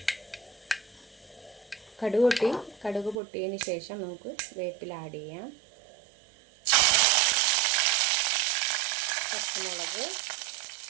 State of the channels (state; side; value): drops out; left; at 3.2 s